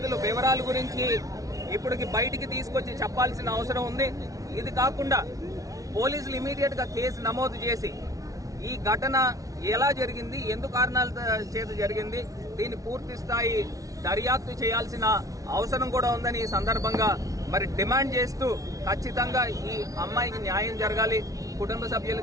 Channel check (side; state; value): left; late; 0.17 ms